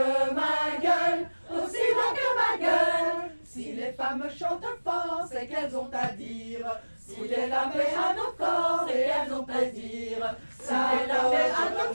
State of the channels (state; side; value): inverted; both; correlation -1.00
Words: ma gueule, aussi bien que ma gueule. Si les femmes chantent fort, c'est qu'elles ont à dire. Foutez la paix à nos corps et elles ont plaisir. Foutez la paix à